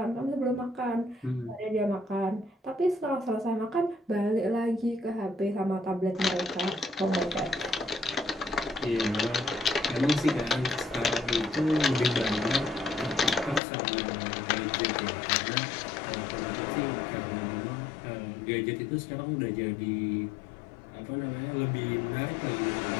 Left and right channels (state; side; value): drops out; right; at 13.6 s